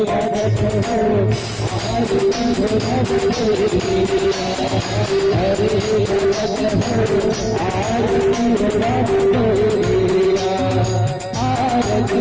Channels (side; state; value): both; identical; correlation 1.00